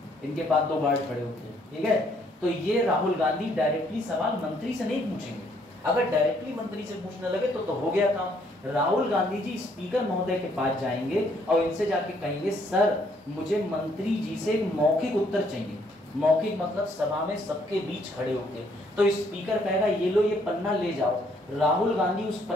इनके पास 2 गार्ड खड़े होते हैं, ठीक है। तो ये राहुल गांधी डायरेक्टली सवाल मंत्री से नहीं पूछेंगे। अगर डायरेक्टली मंत्री से पूछने लगे तो हो गया काम। राहुल गांधी जी स्पीकर महोदय के पास जाएंगे और इनसे जाके कहेंगे सर मुझे मंत्री जी से एक मौखिक उत्तर चाहिए। मौखिक मतलब सभा में सबके बीच खड़े होके। तो स्पीकर कहेगा ये लो, ये पन्ना ले जाओ। राहुल गांधी उस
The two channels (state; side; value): normal; both; correlation 0.67